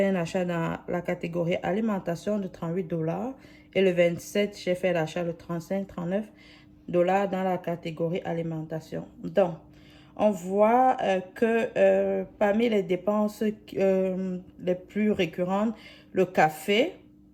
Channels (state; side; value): identical; both; correlation 1.00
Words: un achat dans la catégorie alimentation de 38 $. Et le 27, j'ai fait l'achat de 35-39 $ dans la catégorie alimentation. Donc, on voit que parmi les dépenses les plus récurrentes, le café